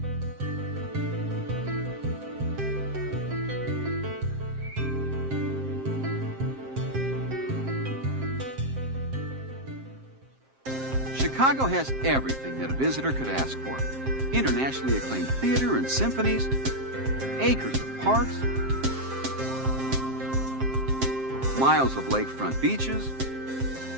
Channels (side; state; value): left; late; 7.6 ms